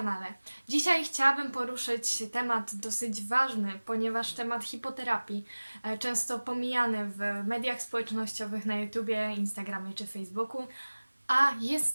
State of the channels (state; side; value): inverted; both; correlation -1.00